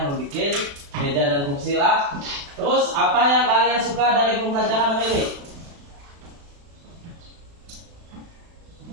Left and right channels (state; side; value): late; left; 36 ms